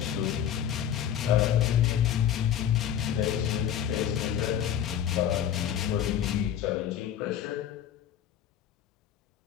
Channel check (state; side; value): quieter; right; 9.9 dB